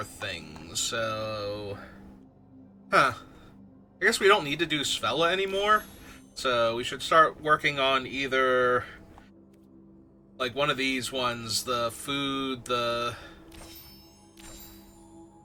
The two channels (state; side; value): identical; both; correlation 1.00